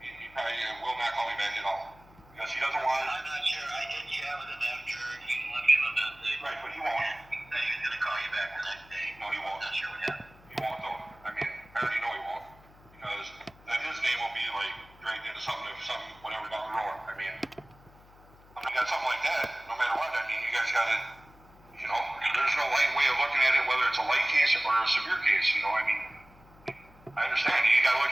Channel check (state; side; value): noise; left; hum, 25 dB below the sound